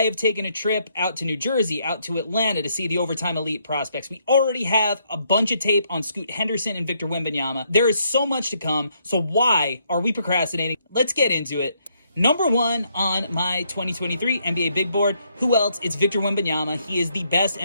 have taken a trip out to New Jersey, out to Atlanta to see the Overtime Elite prospects. We already have a bunch of tape on Scoot Henderson and Victor Wembanyama. There is so much to come, so why are we procrastinating? Let's get into it. Number one on my 2023 NBA Big Board, who else? It's Victor Wembanyama. He is the best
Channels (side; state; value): both; inverted; correlation -0.73